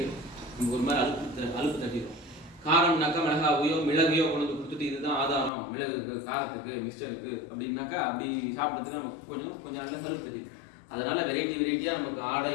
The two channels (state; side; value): drops out; right; at 5.5 s